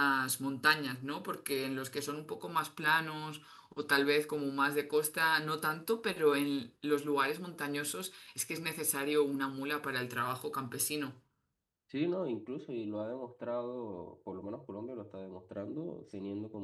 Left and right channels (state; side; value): identical; both; correlation 1.00